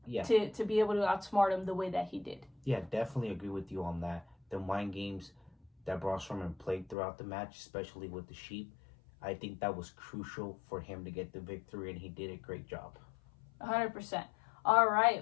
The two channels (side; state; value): right; drops out; at 7.0 s